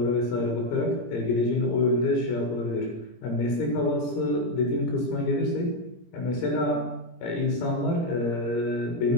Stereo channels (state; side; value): late; right; 17 ms